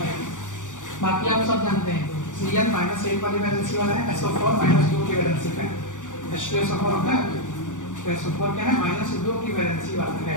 बाकी आप सब जानते हैं, Cn -1 वाली वैलेंसी वाला है, SO4 -2 की वैलेंसी पे है, H2SO4 होता है, SO4 क्या है? -2 की वैलेंसी वाला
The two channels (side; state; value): right; late; 0.86 ms